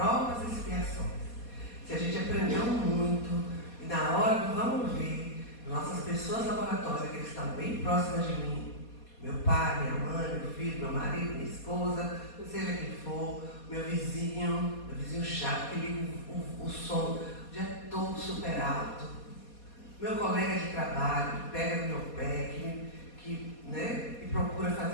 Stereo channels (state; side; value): late; right; 4.2 ms